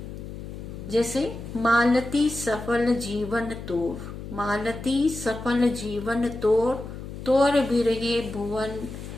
जैसे मालती सफल जीवन तोर, मालती सफल जीवन तोर, तोर विरहे भुवन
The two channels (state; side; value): noise; left; hum, 10 dB below the sound